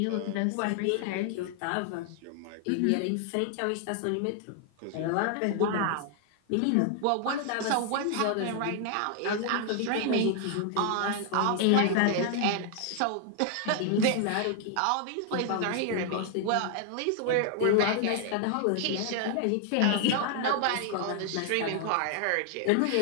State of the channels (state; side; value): different; both; correlation 0.00